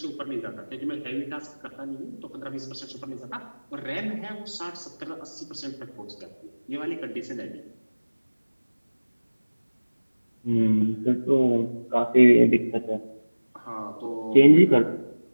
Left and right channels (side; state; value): both; inverted; correlation -1.00